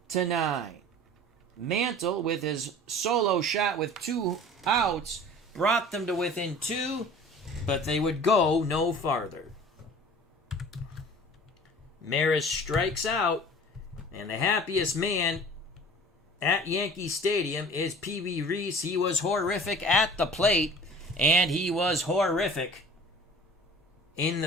Mantle, with his solo shot with 2 outs, brought them to within 2, but they would go no farther. Maris strikes out, and the happiest man at Yankee Stadium is Pee Wee Reese. He was horrific at the plate, and he was horrific in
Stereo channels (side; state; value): both; normal; correlation 0.44